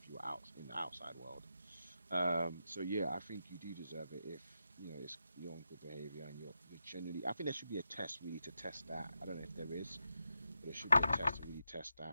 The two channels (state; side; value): inverted; both; correlation -0.87